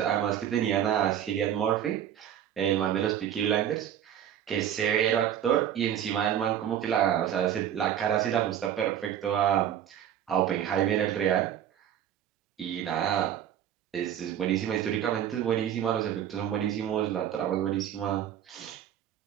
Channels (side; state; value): left; quieter; 10.1 dB